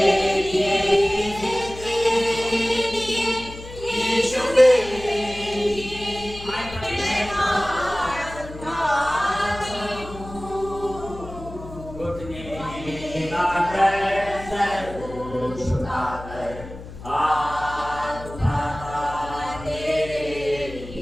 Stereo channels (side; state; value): left; noise; hum, 14 dB below the sound